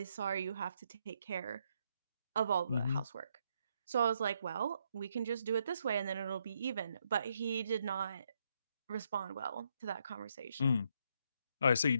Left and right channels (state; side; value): inverted; both; correlation -0.76